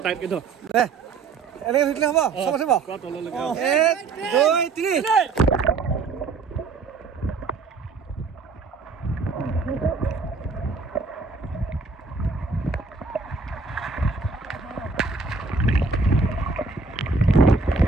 টাইটকৈ ধৰ। এনেকৈ ধৰিলে হ'ব? চব আছে বাৰু? 1, 2, 3।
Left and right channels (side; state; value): left; quieter; 4.4 dB